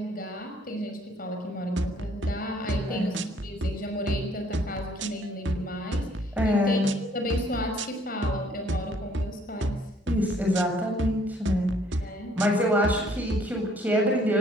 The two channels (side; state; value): both; normal; correlation 0.62